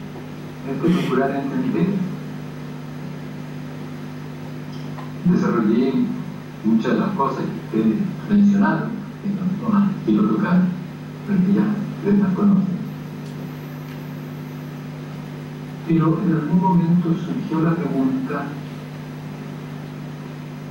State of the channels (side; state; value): both; identical; correlation 1.00